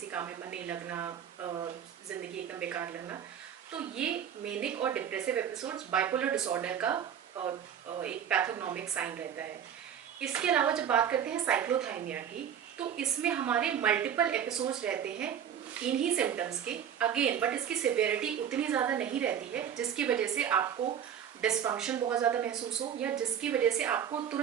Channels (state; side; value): quieter; left; 8.9 dB